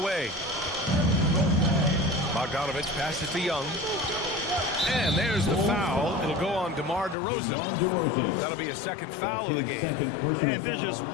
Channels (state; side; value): drops out; right; at 7.2 s